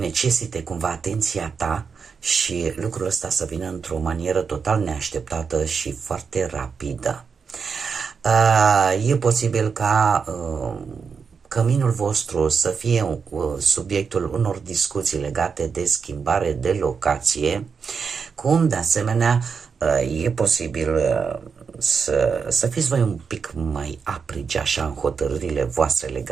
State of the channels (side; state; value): left; quieter; 5.8 dB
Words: cumva atenția ta și lucrul ăsta să vină într-o manieră total neașteptată și foarte rapidă. E posibil ca căminul vostru să fie subiectul unor discuții legate de schimbare de locație, cum de asemenea e posibil să fiți voi un pic mai aprigi așa în hotărârile voastre